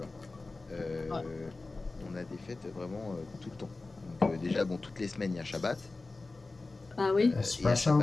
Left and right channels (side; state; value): right; quieter; 3.4 dB